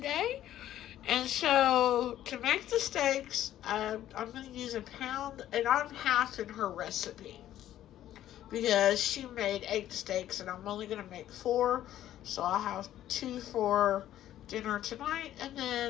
And so, to make the steaks, I'm going to use a pound, and I'm half in her recipe because she made 8 steaks, and I'm only going to make 4. So, I'll have 2 for dinner tonight, and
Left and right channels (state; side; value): quieter; right; 12.4 dB